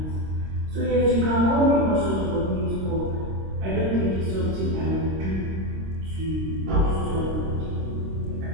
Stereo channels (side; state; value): left; late; 26 ms